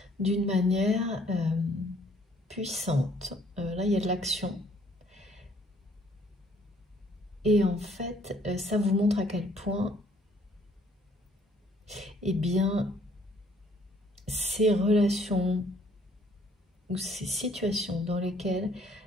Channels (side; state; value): both; normal; correlation 0.62